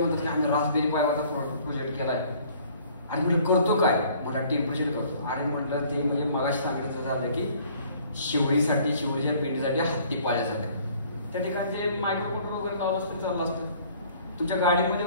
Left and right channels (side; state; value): both; inverted; correlation -0.56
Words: म्हणतात की आम्ही रास्पबेरी पायवरचा प्रोजेक्ट केलाय, आणि म्हणजे करतो काय, मोठा टेम्परेचर करतो. आणि म्हटलं ते म्हणजे मगाशी सांगायचं झालं की शिवडीसाठी, शिवडीच्या पेंडीसाठी हत्ती पाळण्यासाठी, त्या ठिकाणी ते मायक्रो कंट्रोलर वगैरे लावलं असतं, चाललं असतं. तुमच्या गाडीमध्ये